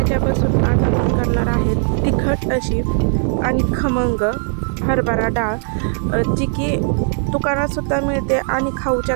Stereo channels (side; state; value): left; silent; 56 dB below the other